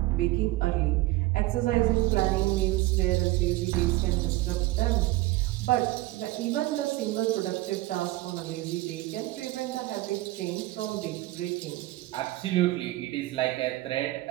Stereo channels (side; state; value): left; quieter; 18.5 dB